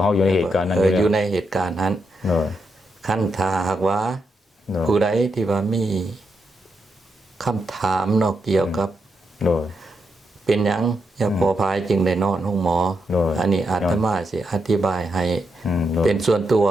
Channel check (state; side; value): normal; both; correlation 0.83